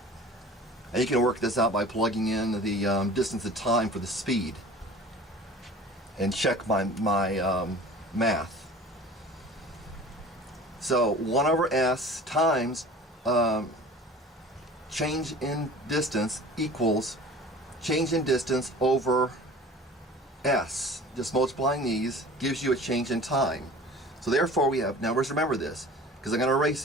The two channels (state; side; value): normal; both; correlation 0.42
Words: And you can work this out by plugging in the distance of time for the speed and check my math. So 1 over S times change in distance equals change in distance over S. Just multiplying these gives you a change in time. So therefore we have, now remember this, because I'm going to